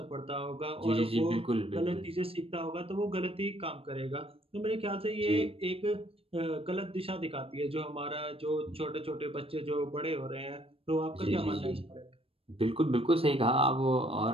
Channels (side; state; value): left; late; 0.28 ms